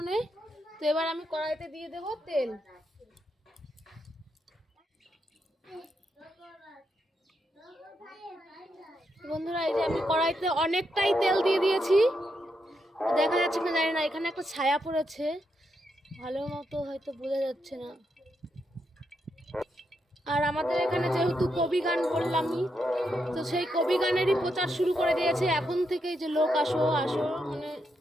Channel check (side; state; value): both; normal; correlation 0.82